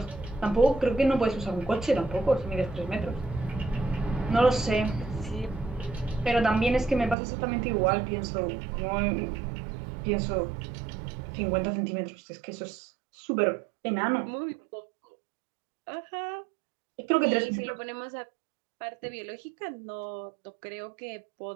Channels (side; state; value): left; drops out; at 7.2 s